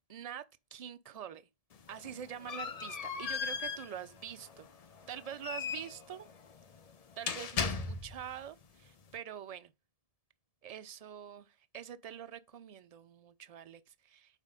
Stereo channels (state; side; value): late; right; 1.7 ms